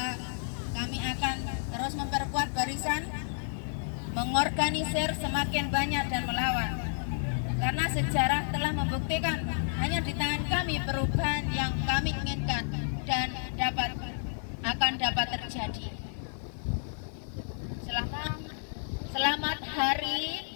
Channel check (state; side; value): silent; right; digital silence